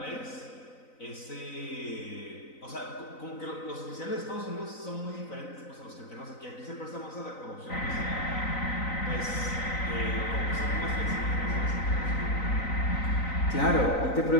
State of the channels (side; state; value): right; late; 3.9 ms